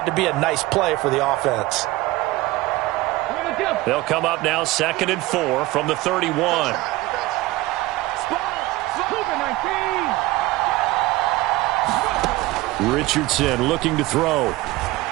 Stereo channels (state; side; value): quieter; left; 18.9 dB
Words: to be a nice play for the offense. They'll come up now 2nd and 4 from the 31. Richardson looking to throw.